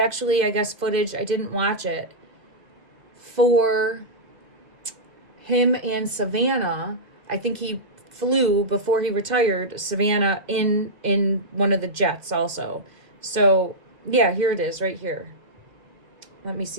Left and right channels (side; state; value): left; late; 2.1 ms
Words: I guess, footage, I didn't watch it, for him and Savannah. I think he flew before he retired Savannah in one of the jets also. So yeah, here it is right here. Let me